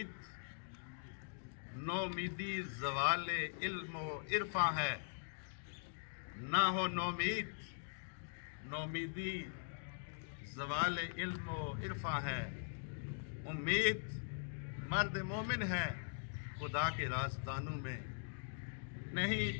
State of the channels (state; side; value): silent; right; digital silence